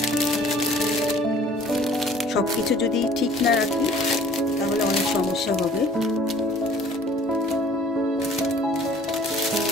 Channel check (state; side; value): normal; both; correlation 0.53